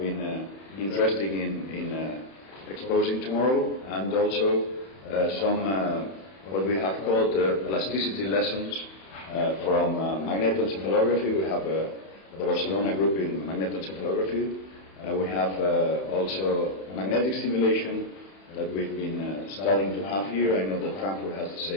interested in exposing tomorrow, and also some what we have called plasticity lessons from magnetoencephalography. We have the Barcelona group in magnetoencephalography. We have also magnetic stimulation that we've been starting to have here. I know that Frankfurt has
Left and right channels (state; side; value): late; right; 31 ms